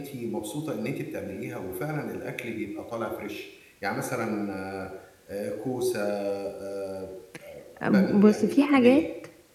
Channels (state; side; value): identical; both; correlation 1.00